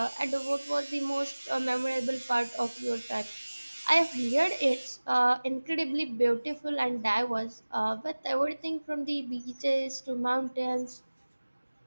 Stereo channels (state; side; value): inverted; both; correlation -1.00